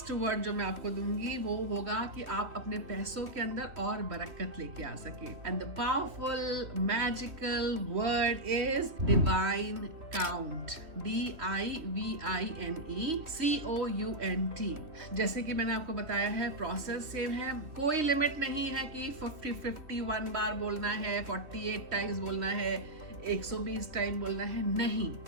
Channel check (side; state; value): left; late; 3.1 ms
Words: वर्ड जो मैं आपको दूंगी वो होगा कि आप अपने पैसों के अंदर और बरकत लेके आ सके, and the powerful magical word is divine count, DIVINECOUNT। जैसे कि मैंने आपको बताया है प्रोसेस सेम है, कोई लिमिट नहीं है कि 51 बार बोलना है, 48 टाइम्स बोलना है, 120 टाइम बोलना है, नहीं,